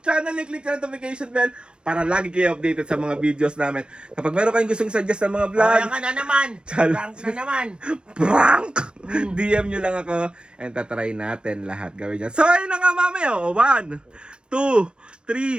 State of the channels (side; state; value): left; late; 0.052 ms